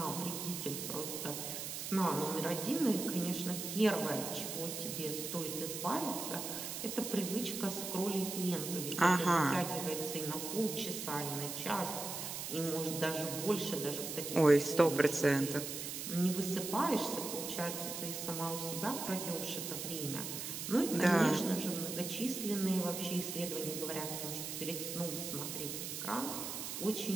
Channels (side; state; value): right; noise; hiss, 5 dB below the sound